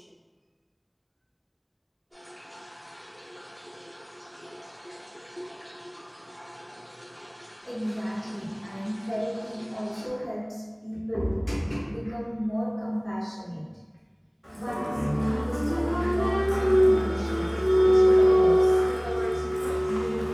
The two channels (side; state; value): both; identical; correlation 1.00